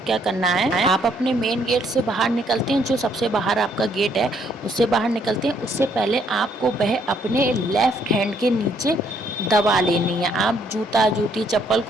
क्या करना है, आप अपने मेन गेट से बाहर निकलते हैं, जो सबसे बाहर आपका गेट है उससे बाहर निकलते हैं, उससे पहले आपको वह अपने लेफ्ट हैंड के नीचे दबा लेनी है। आप जूता, जूती, चप्पल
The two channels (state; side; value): normal; both; correlation 0.68